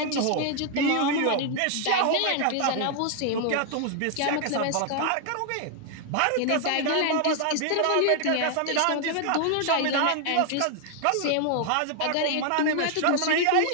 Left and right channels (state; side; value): different; both; correlation 0.00